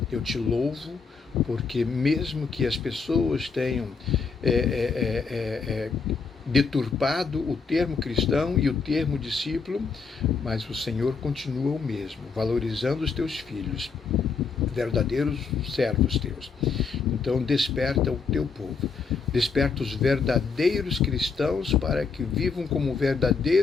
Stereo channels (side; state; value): right; quieter; 5.1 dB